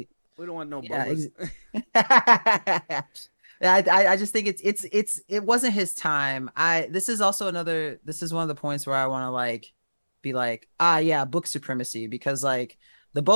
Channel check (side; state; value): both; inverted; correlation -1.00